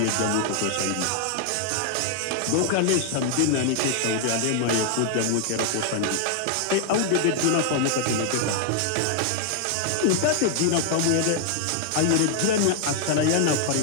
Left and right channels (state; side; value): different; both; correlation 0.00